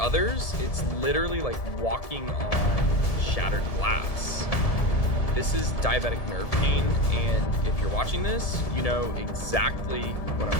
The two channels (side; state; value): right; late; 1.7 ms